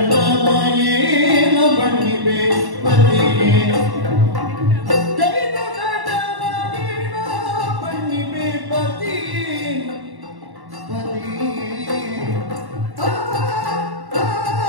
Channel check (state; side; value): late; left; 1.1 ms